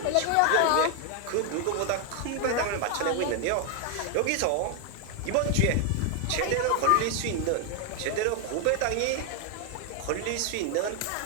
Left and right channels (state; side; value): different; both; correlation 0.00